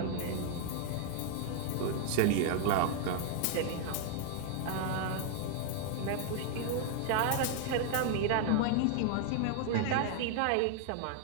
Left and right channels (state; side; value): different; both; correlation 0.00